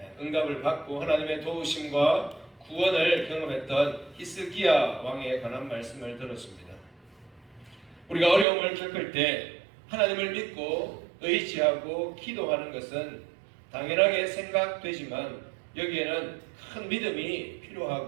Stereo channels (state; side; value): drops out; left; at 8.5 s